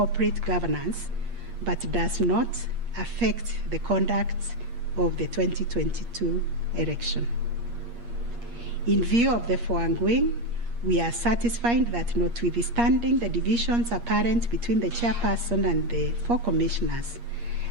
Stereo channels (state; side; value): late; left; 8.5 ms